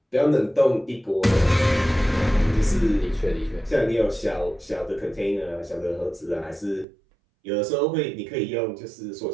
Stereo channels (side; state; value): left; drops out; at 6.9 s